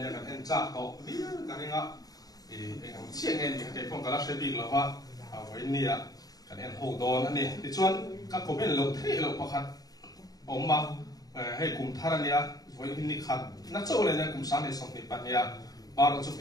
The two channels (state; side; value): late; right; 0.18 ms